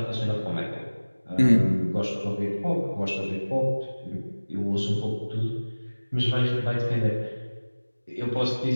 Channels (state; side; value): inverted; both; correlation -1.00